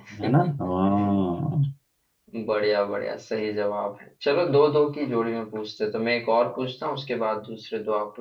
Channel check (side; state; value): both; identical; correlation 1.00